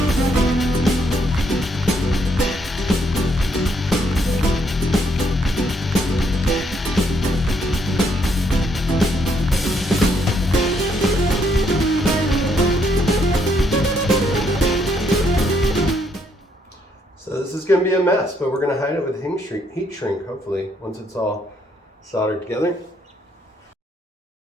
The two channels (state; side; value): normal; both; correlation 0.72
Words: This is going to be a mess, but we're going to hide it with heat shrink, hopefully, once it's all soldered together.